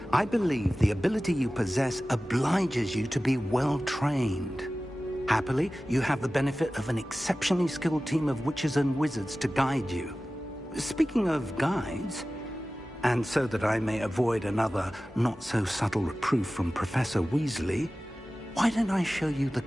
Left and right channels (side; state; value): both; normal; correlation 0.96